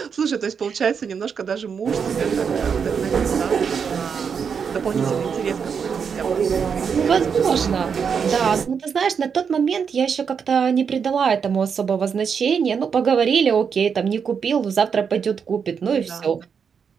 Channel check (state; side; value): quieter; left; 6.5 dB